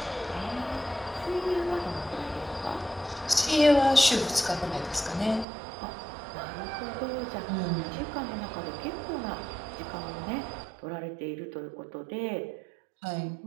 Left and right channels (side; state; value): left; drops out; at 5.5 s